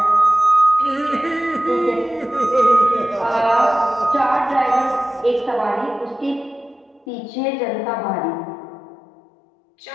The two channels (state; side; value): drops out; right; at 7.1 s